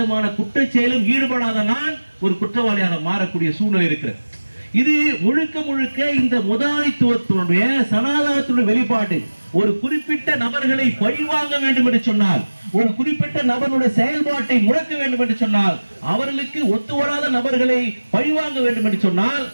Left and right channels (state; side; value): inverted; both; correlation -1.00